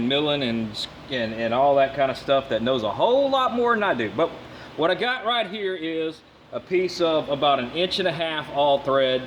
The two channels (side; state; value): both; identical; correlation 1.00